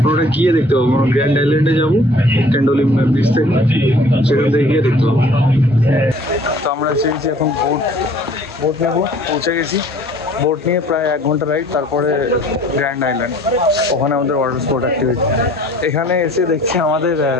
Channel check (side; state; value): both; normal; correlation 0.54